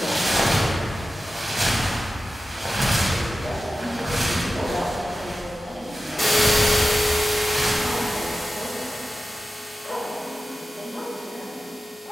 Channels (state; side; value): normal; both; correlation 0.94